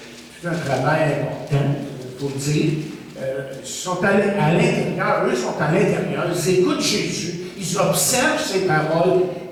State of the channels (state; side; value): identical; both; correlation 1.00